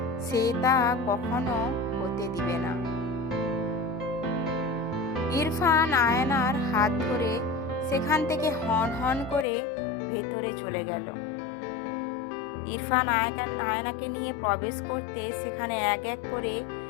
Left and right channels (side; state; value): right; drops out; at 9.5 s